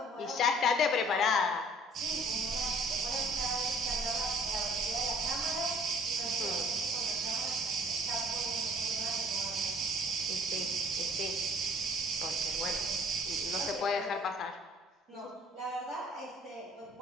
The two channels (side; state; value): both; normal; correlation 0.55